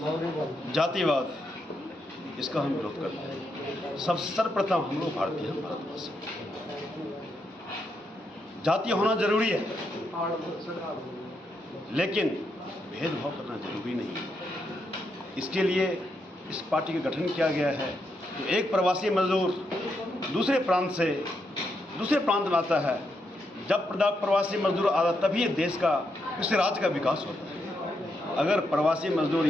जातिवाद, इसका हम विरोध करते हैं। सब सर्वप्रथम हम लोग भारतीय हैं, भारतवासी। जातीय होना जरूरी है, लेकिन भेदभाव करना जरूरी नहीं है। इसके लिए इस पार्टी का गठन किया गया है। तो एक प्रवासी मजदूर दूसरे प्रांत में आता है, जब प्रवासी मजदूर आता तभी ये देश का, किसी राज्य का विकास होता है। अगर प्रवासी मजदूर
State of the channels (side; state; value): both; normal; correlation 0.81